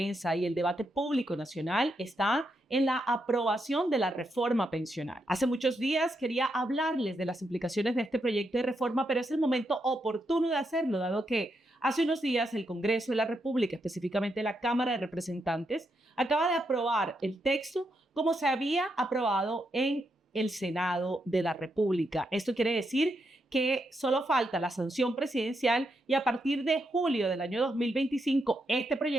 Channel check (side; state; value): both; normal; correlation 0.82